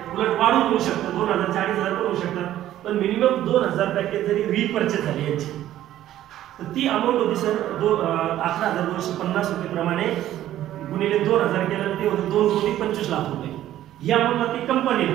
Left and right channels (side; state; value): left; quieter; 12.9 dB